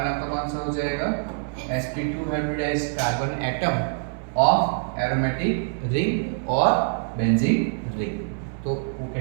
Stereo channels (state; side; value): silent; left; 61 dB below the other